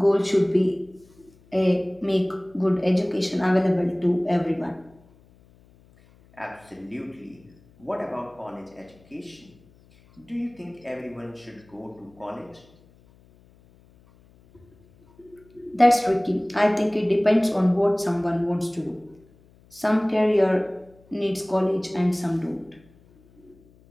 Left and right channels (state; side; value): noise; left; hum, 29 dB below the sound